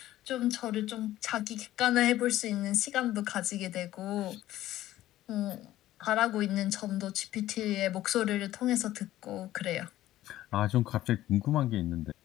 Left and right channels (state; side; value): quieter; right; 14.4 dB